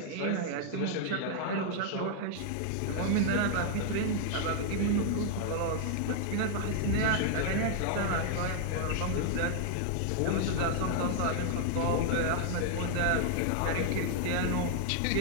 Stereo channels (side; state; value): both; different; correlation 0.00